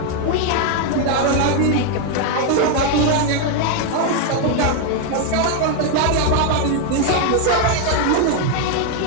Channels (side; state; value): both; different; correlation 0.01